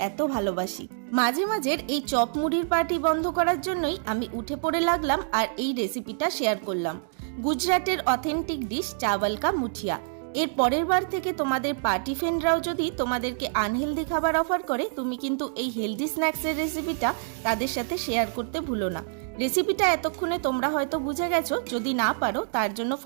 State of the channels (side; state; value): left; silent; digital silence